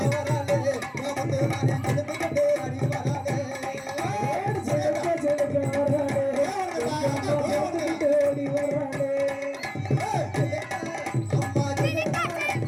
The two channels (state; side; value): identical; both; correlation 1.00